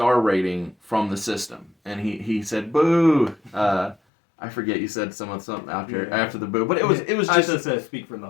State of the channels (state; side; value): drops out; right; at 4.0 s